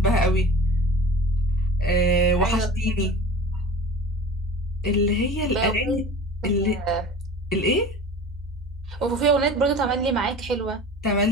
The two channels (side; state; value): both; normal; correlation 0.38